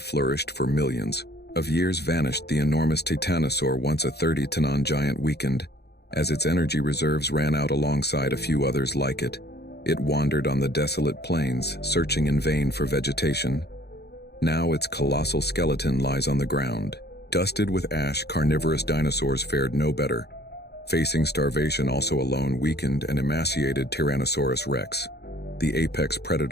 for millions of years vanished. The enormous titanosaur, once a 30-ton giant, weakened as its energy reserves ran out alongside a few others like it. It wandered on the desolate plains, searching in vain for vegetation. Now its colossal skeleton lies on the ground. Dusted with ash, carnivorous dinosaurs fared no better. Facing starvation, also alone, weakened and emaciated Tyrannosaurus rex, the apex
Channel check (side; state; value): right; late; 0.48 ms